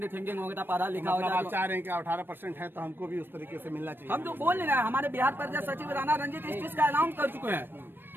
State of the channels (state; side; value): late; left; 0.097 ms